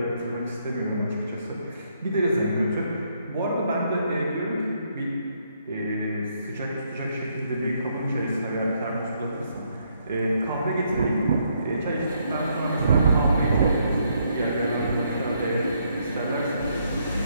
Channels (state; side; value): inverted; both; correlation -0.73